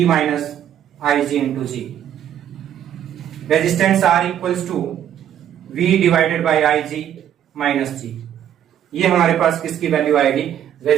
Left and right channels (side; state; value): left; quieter; 10.2 dB